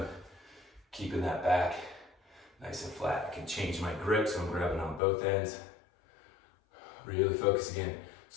Keeping that back nice and flat. I can change my grip, so I'm grabbing on both ends. Really focus again.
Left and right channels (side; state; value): right; drops out; at 5.0 s